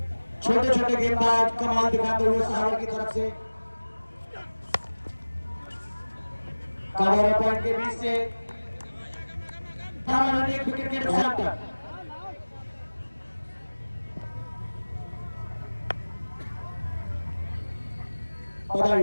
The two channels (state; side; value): inverted; both; correlation -1.00